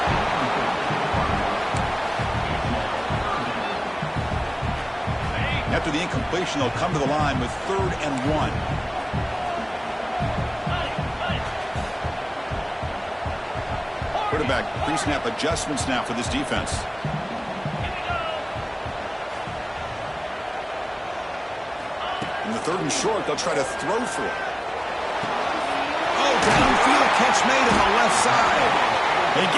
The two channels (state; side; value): identical; both; correlation 1.00